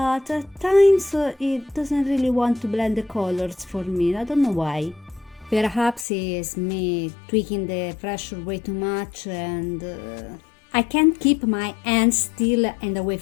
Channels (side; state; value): right; drops out; at 6.1 s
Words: at times it doesn't really want to blend the colors for me. I don't know why. Perhaps it's me tweaking the pressure way too much and I can't keep my hands still and away